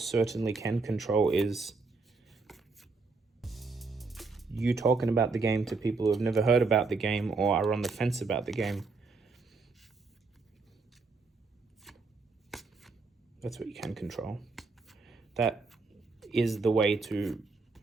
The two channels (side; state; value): left; quieter; 4.1 dB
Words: certainly can control is you talking about the game to people who have never heard about the game or are on the fence about the game. That's what you can control. That is the way to